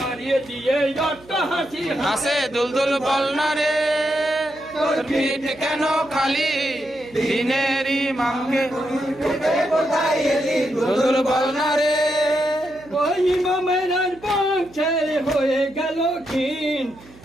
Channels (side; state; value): right; noise; hum, 23 dB below the sound